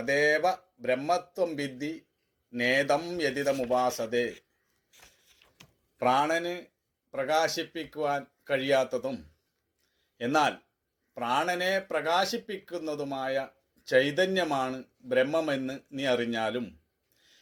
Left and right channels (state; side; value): identical; both; correlation 1.00